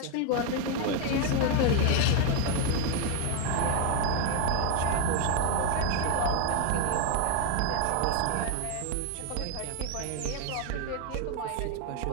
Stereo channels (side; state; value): both; different; correlation 0.01